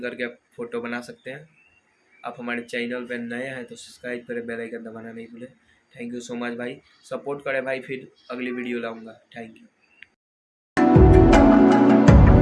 करके फ़ोटो बना सकते हैं। आप हमारे चैनल पर नए हैं तो सब्सक्राइब करें, बेल आइकन दबाना नहीं भूलें। थैंक यू सो मच भाई, सपोर्ट करें भाई, फिर अगली वीडियो लाऊंगा। Thank you.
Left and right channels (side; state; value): both; identical; correlation 1.00